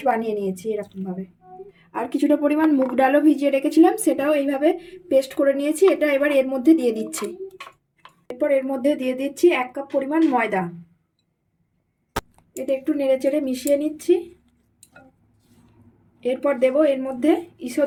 বানিয়ে নিয়েছি এরকমভাবে। আর কিছুটা পরিমাণ মুগ ডালও ভিজিয়ে রেখেছিলাম, সেটাও এইভাবে পেস্ট করে নিয়েছি। এটা এবার এর মধ্যে দিয়ে দিচ্ছি। এরপর এর মধ্যে দিয়ে দিচ্ছি 1 কাপ পরিমাণ ময়দা। এটা একটু নেড়েচেড়ে মিশিয়ে নিচ্ছি। এরপর দেব এর মধ্যে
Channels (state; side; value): identical; both; correlation 1.00